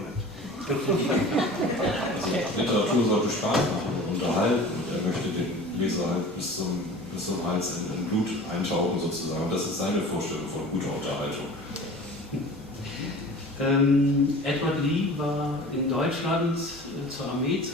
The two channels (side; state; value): both; normal; correlation 0.40